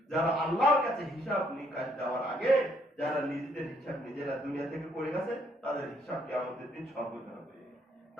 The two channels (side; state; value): both; normal; correlation 0.68